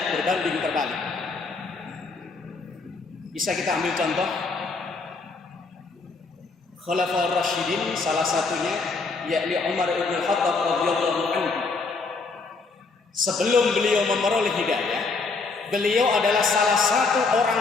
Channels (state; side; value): quieter; right; 4.1 dB